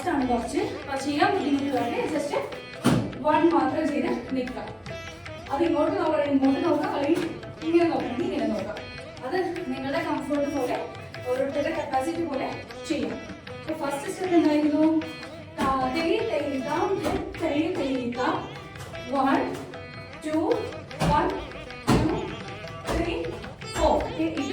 ആണ് കുറച്ച്, അപ്പോൾ ചെയ്യാൻ ബുദ്ധിമുട്ടുള്ളവരെ ജസ്റ്റ് 1 മാത്രം ചെയ്ത് നിൽക്കാം. അത് ഇങ്ങോട്ട് നോക്കണം, ഇങ്ങോട്ട് നോക്കാം, അല്ലെങ്കിൽ ഇങ്ങനെ നോക്കണം, ഇങ്ങനെ നോക്കാം. അത് നിങ്ങളുടെ കംഫർട്ട് പോലെ ഓരോരുത്തരുടെ കപ്പാസിറ്റി പോലെ ചെയ്യാം. അപ്പോൾ ഫസ്റ്റ് സ്റ്റെപ്പ് എന്തായിരുന്നു? 1 2 1 2 3 4 ഇത്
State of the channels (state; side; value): identical; both; correlation 1.00